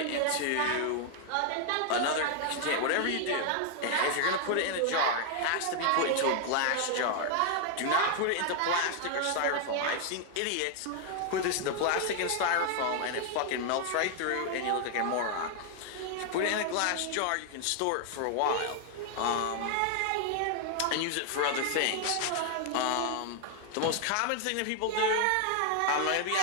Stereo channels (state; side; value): different; both; correlation 0.00